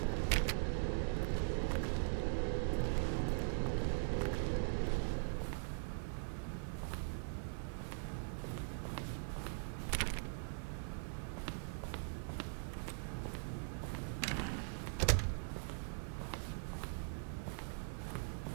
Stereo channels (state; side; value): silent; left; digital silence